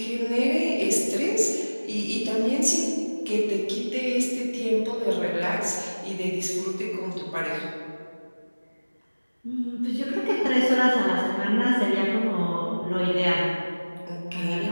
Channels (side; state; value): both; inverted; correlation -1.00